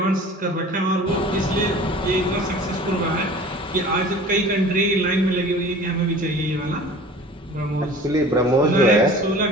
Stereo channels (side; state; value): both; normal; correlation 0.43